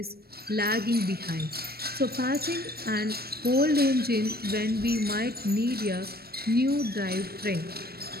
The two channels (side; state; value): left; late; 0.45 ms